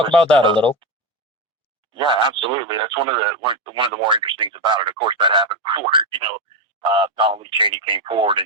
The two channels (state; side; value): normal; both; correlation 0.12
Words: about that a little? Yeah, absolutely. That's one of the more interesting things about it. Of course, that happened before Donald Lee Cheney came forward